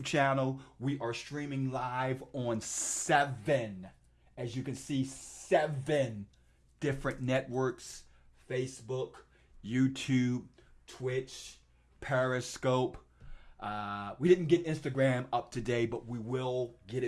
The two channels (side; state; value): both; identical; correlation 1.00